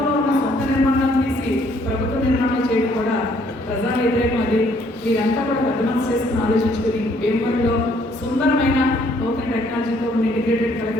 ఉన్న సొంత నిర్మాణాలు తీసి ప్రభుత్వ నిర్మాణాలు చేయడం కూడా ప్రజా వ్యతిరేకం. అది మీరంతా కూడా పెద్ద మనసు చేసుకుని ఆలోచించుకుని భీమవరంలో సుందరమైన నూతన టెక్నాలజీతో ఉన్న ఇంటిగ్రేటెడ్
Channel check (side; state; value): both; normal; correlation 0.65